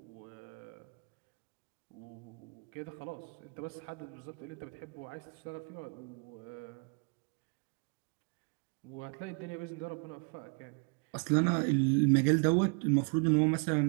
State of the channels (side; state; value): left; quieter; 38.0 dB